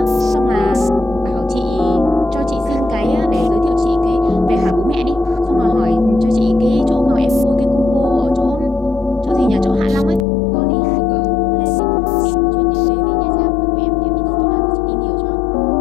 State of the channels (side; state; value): right; drops out; at 10.2 s